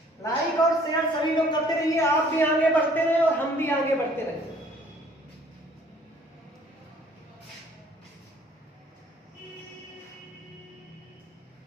लाइक और शेयर सभी लोग करते रहिए, आप भी आगे बढ़ते रहे और हम भी आगे बढ़ते रहे।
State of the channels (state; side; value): normal; both; correlation 0.57